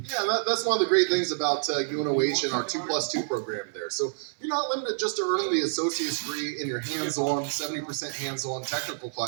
Yeah, that's one of the great things about UNOH and our 2+2 program there. So you're not limited just to earning the associate's degree in your hands-on, 70% hands-on technical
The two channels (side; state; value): left; silent; digital silence